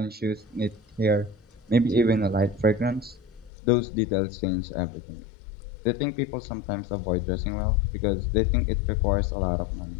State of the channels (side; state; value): right; drops out; at 3.5 s